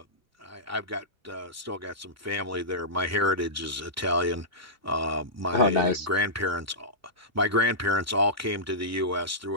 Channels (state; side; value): normal; both; correlation -0.15